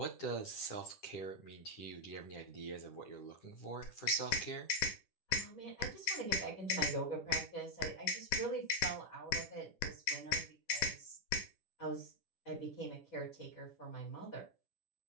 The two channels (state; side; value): late; right; 10 ms